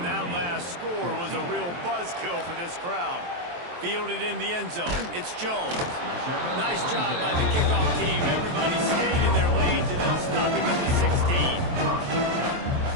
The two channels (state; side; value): late; left; 23 ms